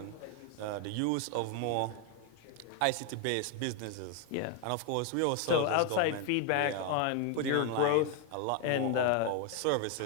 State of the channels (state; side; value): different; both; correlation 0.01